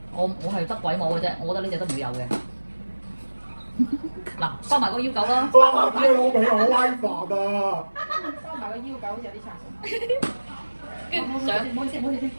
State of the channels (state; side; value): inverted; both; correlation -1.00